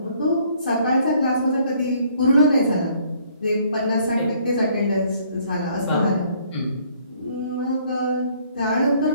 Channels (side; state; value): both; inverted; correlation -0.63